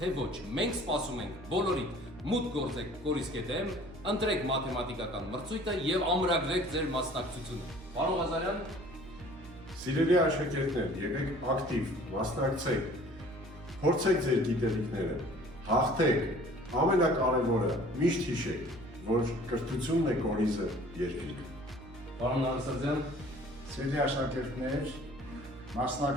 ոչ, մենք սպասում ենք բոլորիդ մուտք գործեք կորիս.am, ընտրեք մաթեմատիկական մրցույթը եւ ամրագրեք ձեր մասնակցությունը։ Պարոն Ղազարյան, Սիրելի աշակերտներ, եղեք ակտիվ, մասնակցեք, փորձեք ձեր գիտելիքները, հաղթեք, ամենակարևորը միշտ հիշեք, որ կրթությունն է կորիզը երկրի։ Պարոն Նարսարդյան, Սիրելի աշակերտներ,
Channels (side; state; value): right; noise; hum, 19 dB below the sound